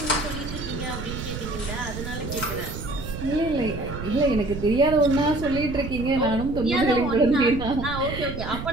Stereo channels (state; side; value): noise; right; rumble, 8 dB below the sound